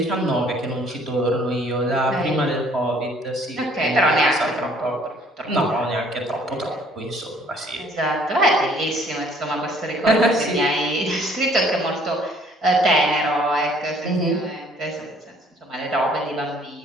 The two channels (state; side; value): normal; both; correlation 0.59